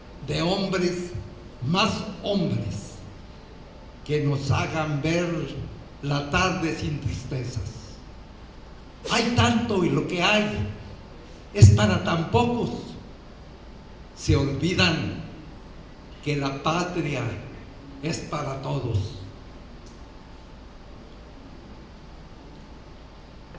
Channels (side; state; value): both; identical; correlation 1.00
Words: de hombres, más hombres, que nos hagan ver la tarde sin tristezas. Hay tanto y lo que hay es para tan pocos. Se olvidan que la patria es para todos.